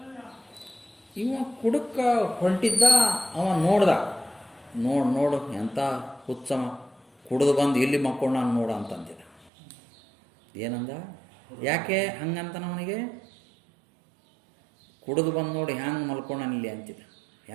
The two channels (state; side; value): drops out; left; at 9.5 s